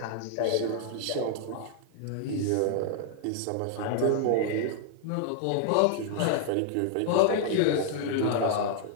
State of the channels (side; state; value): both; different; correlation 0.00